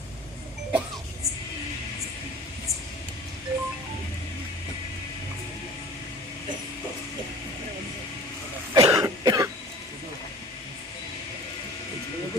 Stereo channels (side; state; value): both; normal; correlation 0.43